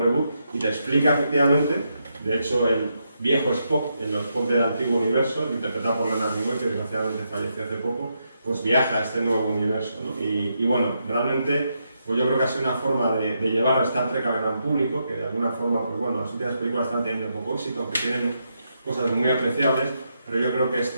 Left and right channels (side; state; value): both; inverted; correlation -0.81